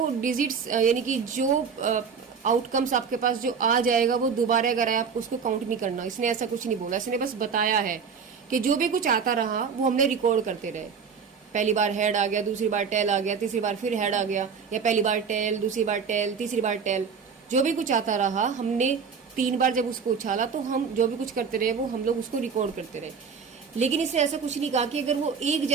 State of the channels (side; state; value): left; quieter; 6.1 dB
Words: डिजिट्स यानी कि जो आउटकम्स आपके पास जो आ जाएगा वो दोबारा अगर आए आपको उसको काउंट नहीं करना, इसने ऐसा कुछ नहीं बोला। इसने बस बताया है कि जो भी कुछ आता रहा वो हमने रिकॉर्ड करते रहे। पहली बार हेड आ गया, दूसरी बार टेल आ गया, तीसरी बार फिर हेड आ गया, या पहली बार टेल, दूसरी बार टेल, तीसरी बार टेल, जो भी कुछ आता रहा हमने 3 बार जब उसको उछाला तो हम जो भी कुछ करते रहे वो हम लोग उसको रिकॉर्ड करते रहे। लेकिन इसने ऐसा कुछ नहीं कहा कि अगर वो एक